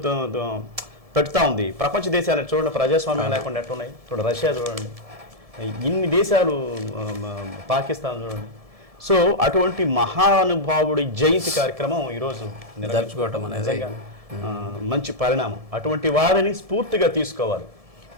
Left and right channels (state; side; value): late; left; 1.7 ms